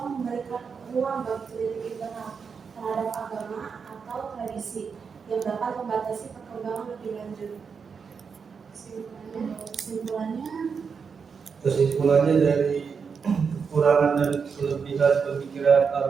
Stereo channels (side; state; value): left; quieter; 5.9 dB